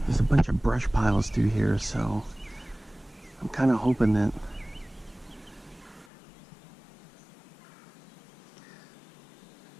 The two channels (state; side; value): drops out; right; at 6.1 s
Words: There's a bunch of brush piles through here, so I'm kind of hoping that